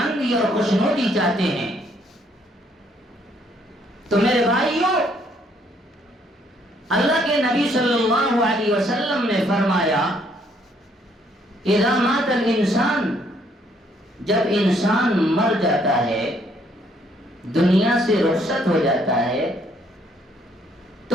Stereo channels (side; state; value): both; normal; correlation 0.68